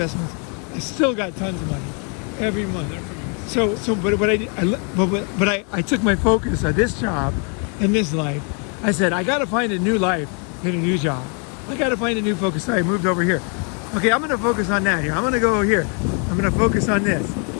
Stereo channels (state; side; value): quieter; right; 38.6 dB